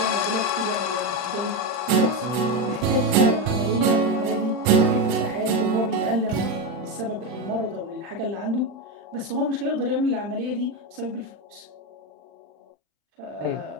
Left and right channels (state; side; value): late; left; 40 ms